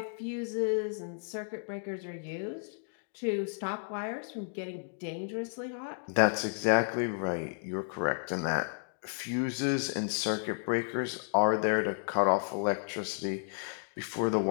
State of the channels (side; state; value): right; silent; digital silence